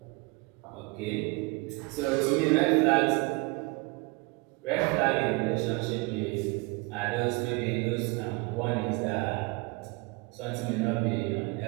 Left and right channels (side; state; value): left; quieter; 27.3 dB